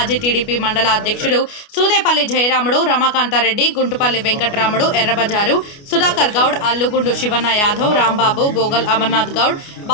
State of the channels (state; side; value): late; right; 29 ms